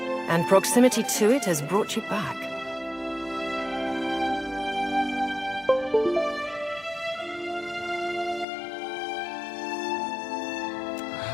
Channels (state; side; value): drops out; right; at 8.5 s